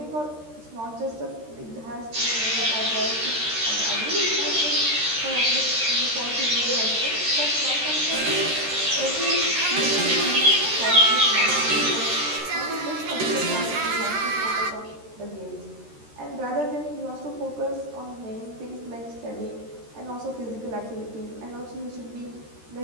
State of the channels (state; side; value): late; left; 13 ms